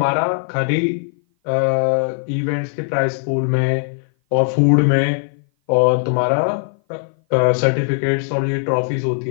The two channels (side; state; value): right; silent; 57 dB below the other